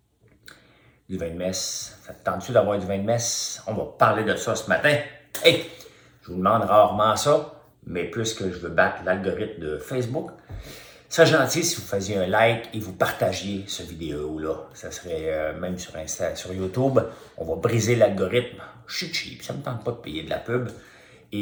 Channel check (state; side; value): identical; both; correlation 1.00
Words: Du vin de messe. Ça te tente-tu d'avoir du vin de messe? On va parler de ça ce matin. Hey, je vous demande rarement ça, mais puisque je veux battre l'algorithme de Facebook, ça serait gentil si vous faisiez un like et vous partagiez cette vidéo-là. Ça serait même sur Insta, sur YouTube. On va briser l'algorithme. Je suis cheap, ça ne me tente pas de payer de la pub.